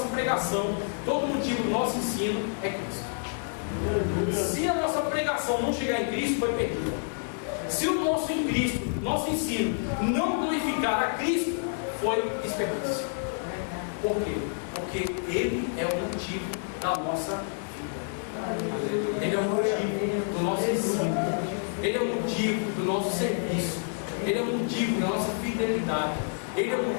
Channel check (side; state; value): right; silent; digital silence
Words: pregação, todo motivo do nosso ensino é Cristo. Se a nossa pregação não chegar em Cristo, foi perdida. Se o nosso ensino não glorificar a Cristo, foi desperdício. Por quê? Porque Ele é o motivo da nossa vida. Ele é o motivo do nosso ensino. Ele é o motivo do nosso serviço. Ele é o motivo da nossa fidelidade. Ele é o